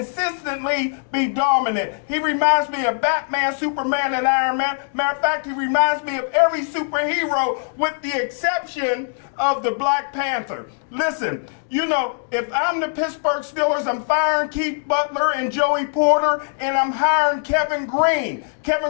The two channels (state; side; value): silent; right; digital silence